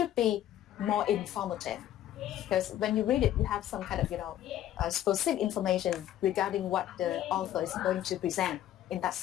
be more informative, because when you read it, you have some kind of, specific information regarding what the author is going to present in that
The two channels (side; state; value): right; quieter; 12.3 dB